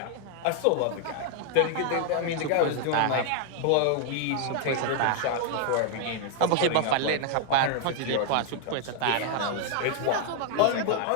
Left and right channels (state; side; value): different; both; correlation 0.00